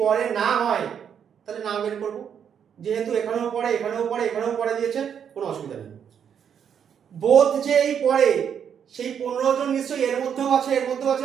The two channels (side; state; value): left; quieter; 8.1 dB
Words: পরে না হয় তাহলে না বের করবো। যেহেতু এখানেও পড়ে এখানেও পড়ে এখানেও পড়ে দিয়েছে, কোনো অসুবিধা নেই। বোথ যে এই পড়ে সেই 15 জন নিশ্চয়ই এর মধ্যেও আছে, এর মধ্যেও